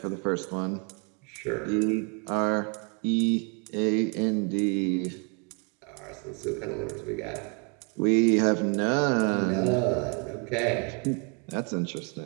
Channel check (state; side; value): quieter; left; 36.3 dB